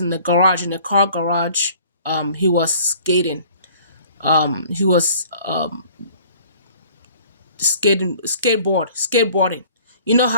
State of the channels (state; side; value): inverted; both; correlation -0.52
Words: the garage, in a car garage. He was skating. He was skateboarding. You know